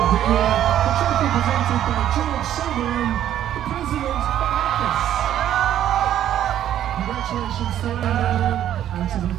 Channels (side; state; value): left; quieter; 11.3 dB